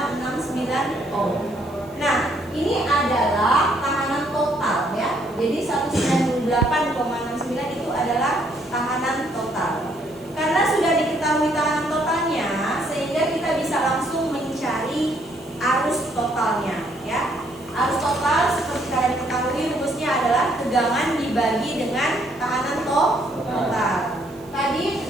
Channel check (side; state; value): right; noise; hiss, 26 dB below the sound